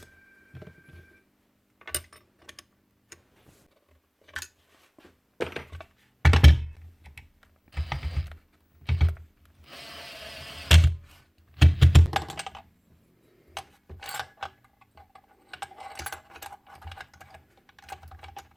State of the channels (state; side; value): identical; both; correlation 1.00